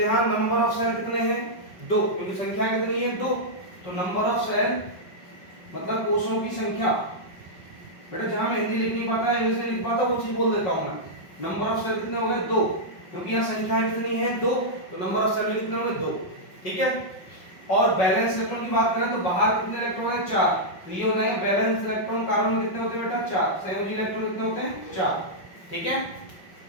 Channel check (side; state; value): right; late; 5.5 ms